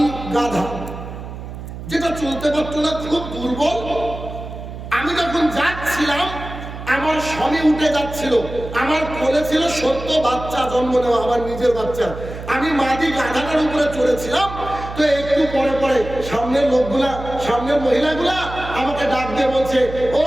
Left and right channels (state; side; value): noise; right; hum, 10 dB below the sound